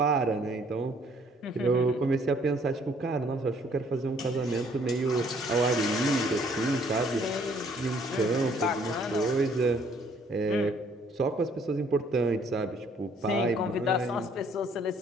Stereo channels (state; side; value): normal; both; correlation 0.62